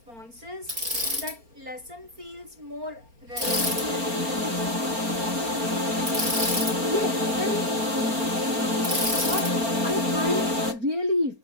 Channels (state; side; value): late; left; 4.3 ms